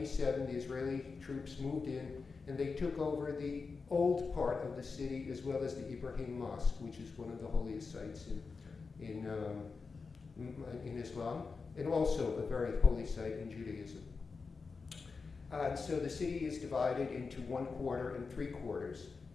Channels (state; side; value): quieter; right; 4.7 dB